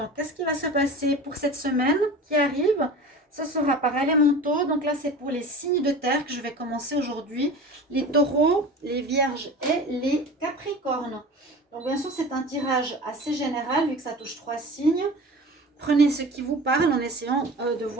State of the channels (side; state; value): both; normal; correlation 0.36